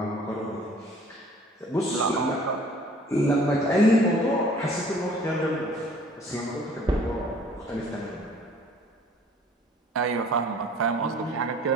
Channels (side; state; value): both; normal; correlation 0.53